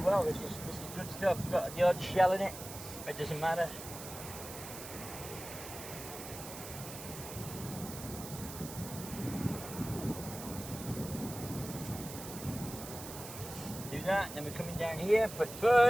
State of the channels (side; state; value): right; noise; hiss, 11 dB below the sound